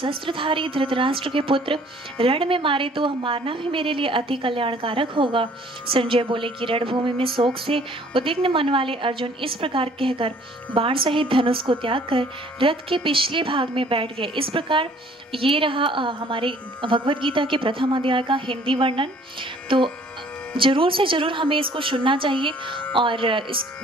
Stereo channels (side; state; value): both; normal; correlation 0.56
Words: धृतराष्ट्र के पुत्र रण में मारे तो वह मारना भी मेरे लिए अति कल्याणकारक होगा। संजय बोले कि रणभूमि में शोक से उद्विग्न मन वाले अर्जुन इस प्रकार कहकर बाण सहित धनुष को त्याग कर रथ के पिछले भाग में बैठ गए। इस प्रकार ये रहा हमारे भगवद गीता के प्रथम अध्याय का हिंदी वर्णन। तो जरूर से जरूर हमें इसको सुनना चाहिए और